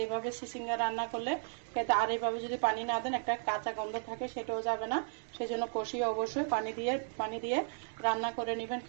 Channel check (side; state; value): left; silent; digital silence